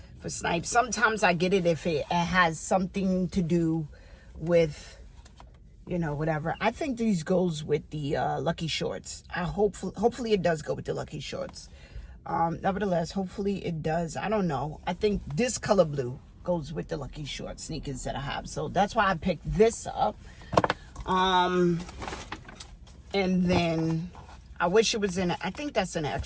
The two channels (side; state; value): both; identical; correlation 1.00